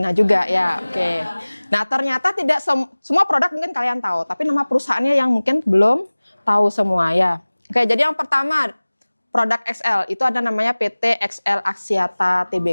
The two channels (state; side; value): inverted; both; correlation -1.00